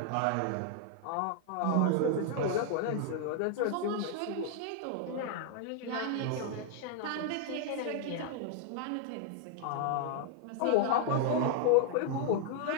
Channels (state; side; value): different; both; correlation 0.00